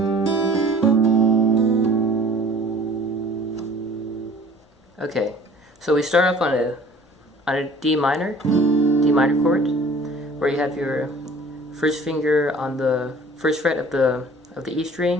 Okay, so we start off on a D minor chord, where you have your first finger on the first fret of the E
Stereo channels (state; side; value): normal; both; correlation 0.49